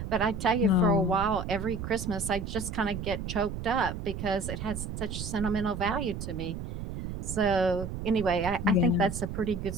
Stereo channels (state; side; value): noise; right; rumble, 6 dB below the sound